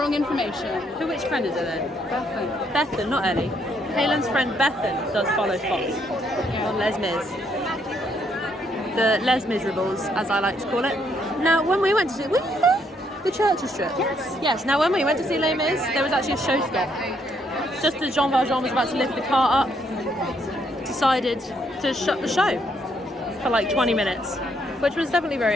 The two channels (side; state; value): both; normal; correlation 0.72